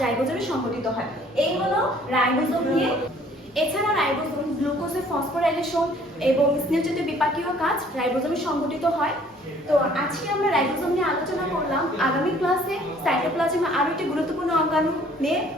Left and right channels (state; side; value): normal; both; correlation 0.57